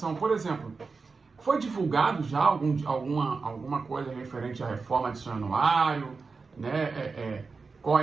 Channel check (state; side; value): quieter; left; 4.5 dB